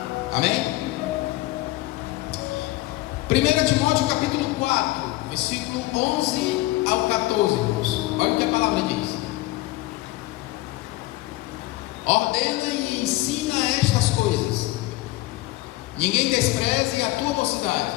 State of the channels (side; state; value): right; quieter; 18.8 dB